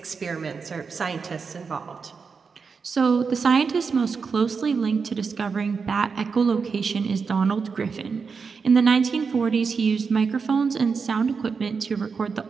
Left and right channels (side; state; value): left; quieter; 5.3 dB